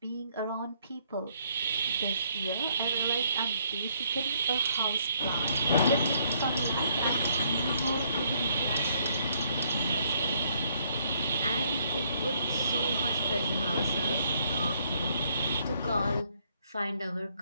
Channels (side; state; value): both; inverted; correlation -0.69